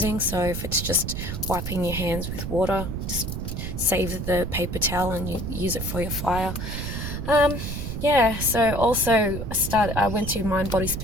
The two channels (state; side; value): noise; right; rumble, 5 dB below the sound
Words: So if it's just wiping your hands with water, just save the paper towel and you use it for your fire. Yeah, so also I went to Mind Body